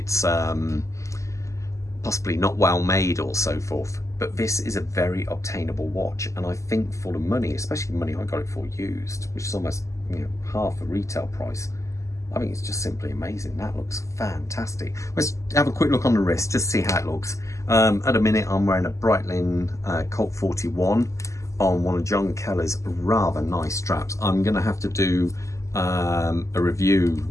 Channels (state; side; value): late; right; 0.15 ms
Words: possibly not well made or so forth. But this is a very obtainable watch, and I think for the money, especially the money I got it for used, which is almost half the retail price, I think it's just simply amazing. That looks fantastic. Let's have a quick look on the wrist, just see how it looks. At the minute, I'm wearing a Breitling Colt 41 on one of John Keller's rather nice straps. I'm going to have to do a